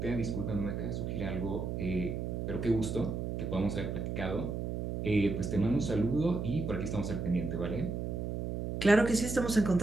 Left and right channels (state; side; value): noise; right; hum, 3 dB below the sound